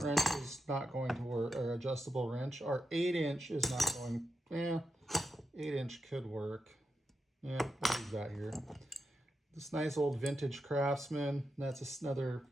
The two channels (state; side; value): normal; both; correlation 0.86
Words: wrench is not going to work, or adjustable wrench. Our 8-inch is not going, 8-inch could work. Yeah, what do we got here? This nice old vintage Craftsman. That's another